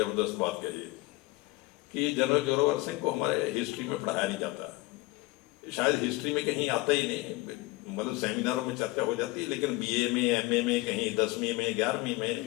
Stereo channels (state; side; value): quieter; right; 21.4 dB